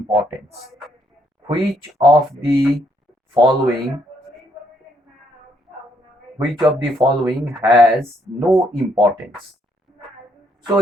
Which of the following has no importance? So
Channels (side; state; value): both; normal; correlation 0.72